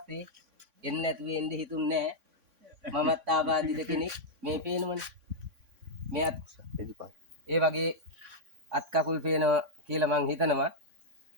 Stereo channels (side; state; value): left; late; 3.5 ms